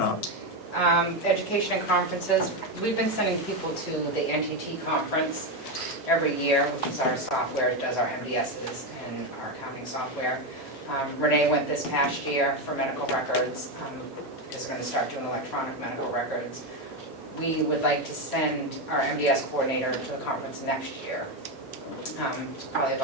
up? Education and conferences, we've been sending people to the NTT conference every year, which is our software, it does our MDSs and our accounting software. Renee went this past year for medical records, is going to start doing electronic medical records. We would like to send our MDS coordinator to the conference next year. It's probably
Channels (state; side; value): normal; both; correlation 0.10